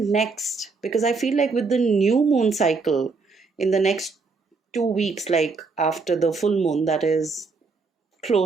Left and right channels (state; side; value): quieter; left; 4.4 dB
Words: because I feel like with the new moon cycle in the next 2 weeks, like after the full moon, that is